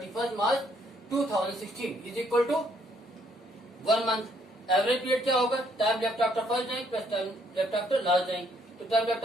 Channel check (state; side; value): normal; both; correlation 0.69